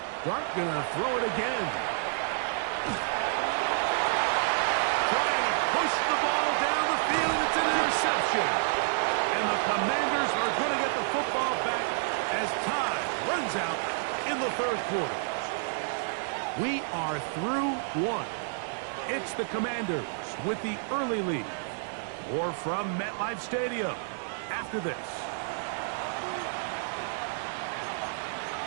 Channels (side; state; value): left; silent; digital silence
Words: Dart going to throw it again. Trying to push the ball down the field. It's an interception. And the Commanders are going to get the football back as time runs out in the 3rd quarter. We are through one. It's the Commanders with the early lead. Or from MetLife Stadium after this.